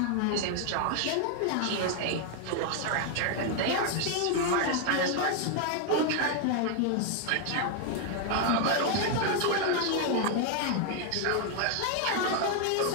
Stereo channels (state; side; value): different; both; correlation 0.00